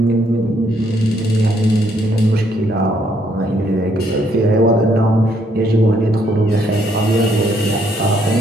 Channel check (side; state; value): both; normal; correlation 0.70